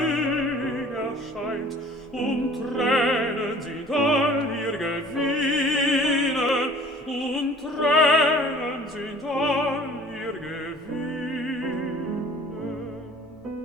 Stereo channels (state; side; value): normal; both; correlation 0.50